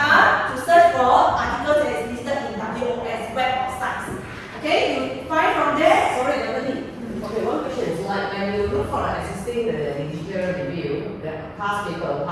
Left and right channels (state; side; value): identical; both; correlation 1.00